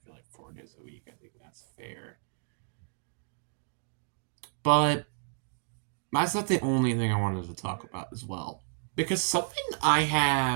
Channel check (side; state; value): left; silent; digital silence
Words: feel like 4 days a week. I think that's fair. But that's not the only thing I wanted to talk about as well. Because something I